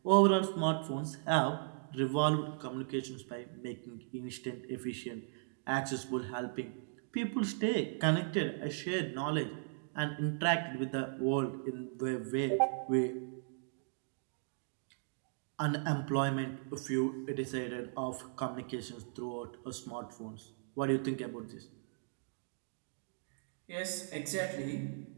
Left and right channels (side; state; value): left; silent; digital silence